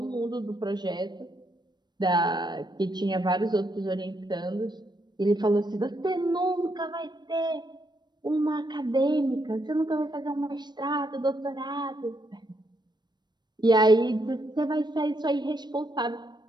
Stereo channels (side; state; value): left; late; 0.21 ms